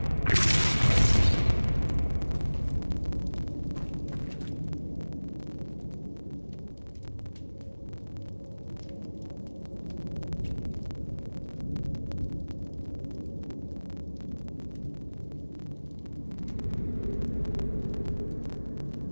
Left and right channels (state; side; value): inverted; both; correlation -1.00